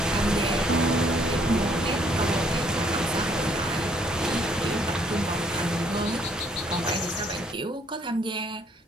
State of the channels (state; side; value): normal; both; correlation 0.65